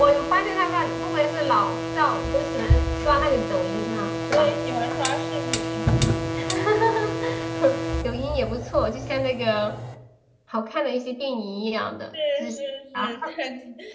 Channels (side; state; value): both; identical; correlation 1.00